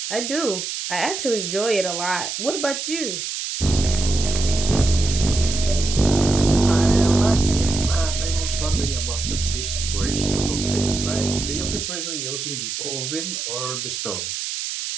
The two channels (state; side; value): noise; right; hiss, 5 dB below the sound